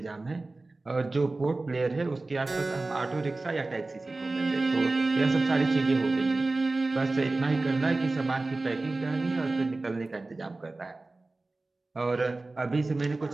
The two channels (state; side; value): quieter; left; 3.2 dB